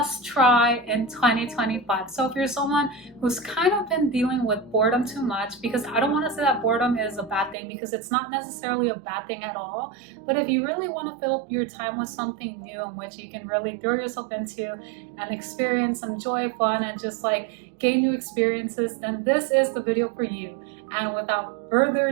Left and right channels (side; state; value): left; drops out; at 7.6 s